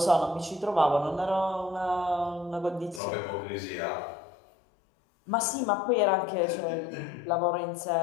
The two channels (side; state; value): right; drops out; at 3.0 s